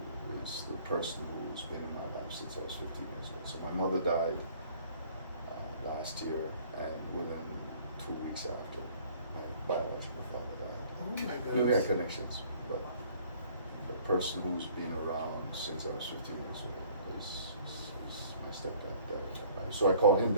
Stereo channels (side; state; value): both; inverted; correlation -0.55